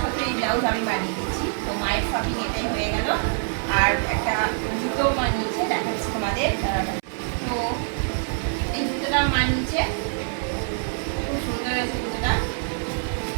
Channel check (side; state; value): left; silent; 62 dB below the other